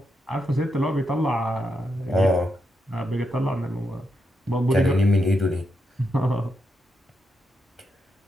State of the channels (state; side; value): normal; both; correlation 0.83